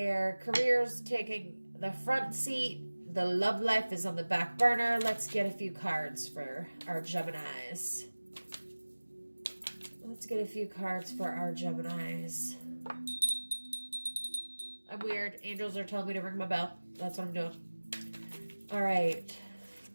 career's taking the front seat. The love life is on the back burner. Let's get a few cards for our Geminis. Let's get a few cards for our Geminis. I'm weird. Angels are telling me to ring my bell. That's what I'm doing. All right.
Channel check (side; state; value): both; inverted; correlation -1.00